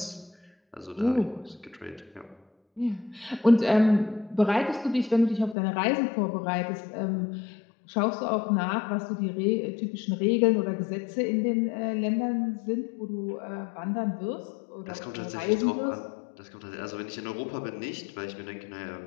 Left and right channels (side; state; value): right; drops out; at 5.6 s